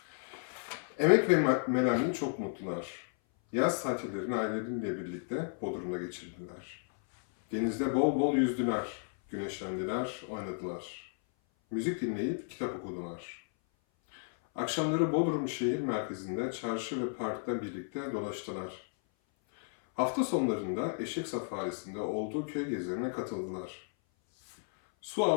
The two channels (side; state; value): right; silent; 56 dB below the other